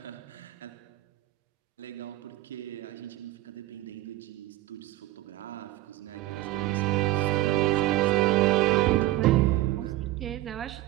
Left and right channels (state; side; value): quieter; left; 16.5 dB